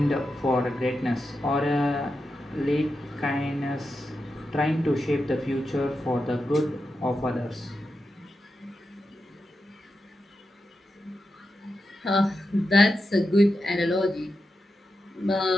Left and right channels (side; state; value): both; normal; correlation 0.89